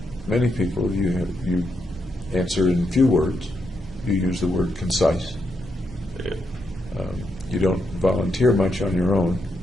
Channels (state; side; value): normal; both; correlation 0.81